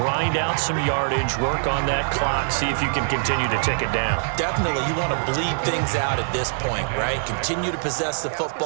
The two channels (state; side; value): silent; left; 63 dB below the other